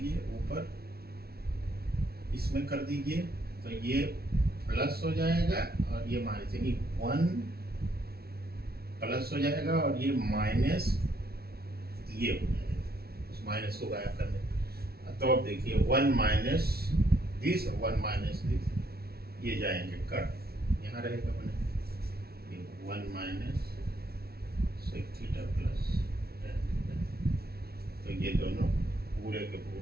ऊपर, इसमें कर दीजिए, तो ये प्लस हो जाएगा और ये माइनस, यानी 1 प्लस हो जाएगा और ये माइनस ये हो जाएगा, उस माइनस को गायब करने। तो अब देखिए 1 माइनस दिस और 1 माइनस दिस, ये जाएंगे कट, यहाँ रहेगा बने ये 1 minus sec theta plus tan theta, तो ये दोनों पूरे के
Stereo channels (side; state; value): left; late; 0.45 ms